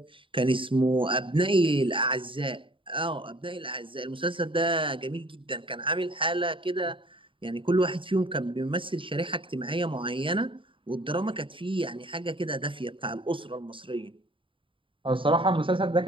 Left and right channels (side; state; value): left; late; 0.25 ms